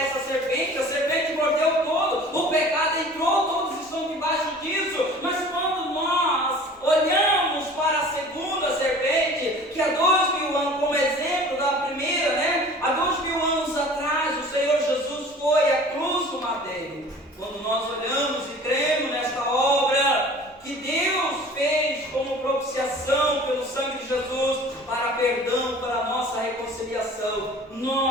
serpente, a serpente mordeu todo, o pecado entrou, todos estão debaixo disso, mas quando nós olhamos para a segunda serpente, que há 2000 anos, como exemplo da primeira, né? Há 2000 anos atrás, o Senhor Jesus foi à cruz do madeiro. Quando nós olhamos e cremos nesta obra que Deus fez como propiciação pelo sangue de Jesus para perdão, para a nossa reconciliação,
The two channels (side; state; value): both; normal; correlation 0.45